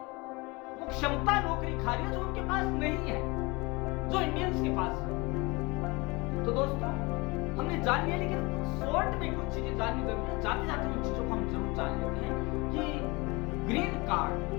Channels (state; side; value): quieter; right; 25.4 dB